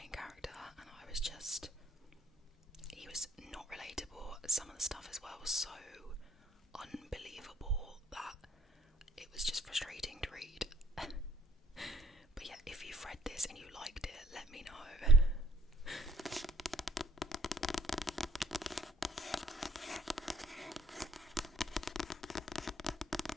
some of the stuff as well was so unbelievable that it was just frustrating to read. But yeah, if you've read this and you liked it, let me know.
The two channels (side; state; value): both; normal; correlation 0.64